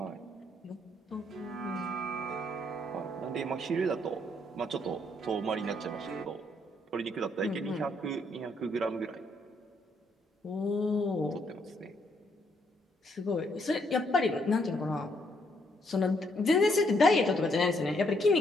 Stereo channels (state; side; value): normal; both; correlation 0.72